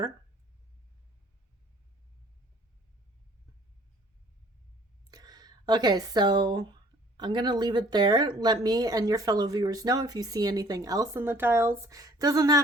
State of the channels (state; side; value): normal; both; correlation 0.56